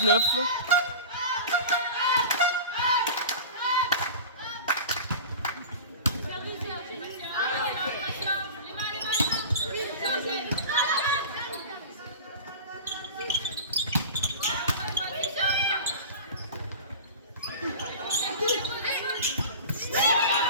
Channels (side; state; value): both; inverted; correlation -0.34